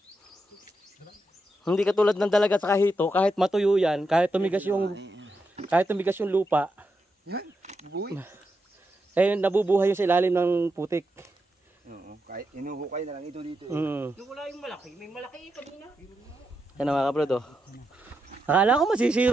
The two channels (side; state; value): both; normal; correlation 0.85